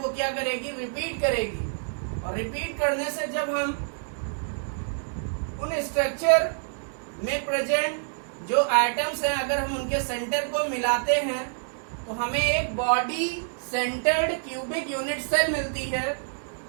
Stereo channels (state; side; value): silent; left; digital silence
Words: क्या करेगी, रिपीट करेगी। और रिपीट करने से जब हम उन स्ट्रक्चर में प्रेजेंट जो एटम्स हैं अगर हम उनके सेंटर को मिलाते हैं तो हमें एक body centred cubic unit cell मिलती है,